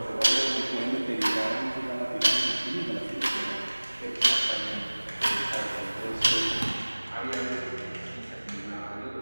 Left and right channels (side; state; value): both; inverted; correlation -1.00